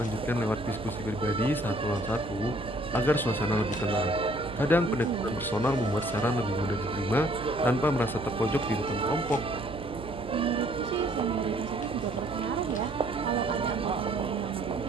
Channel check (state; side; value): noise; right; hum, 12 dB below the sound